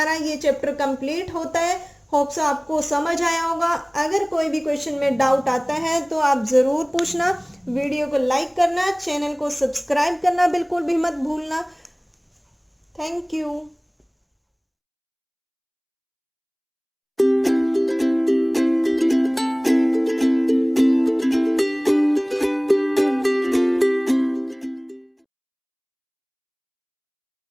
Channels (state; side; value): identical; both; correlation 1.00